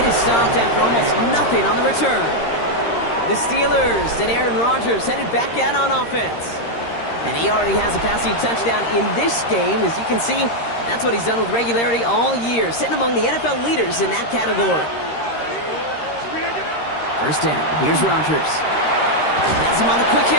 is stopped after almost nothing on the return. The Steelers and Aaron Rodgers headed back out on offense. And he already has a passing touchdown in this game. As you can see, that's what he's done with regularity all year, sitting among the NFL leaders in that category. First down, here's Rodgers. That's him on the quick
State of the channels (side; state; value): right; late; 13 ms